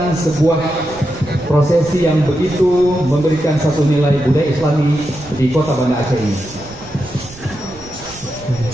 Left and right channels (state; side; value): noise; right; rumble, 19 dB below the sound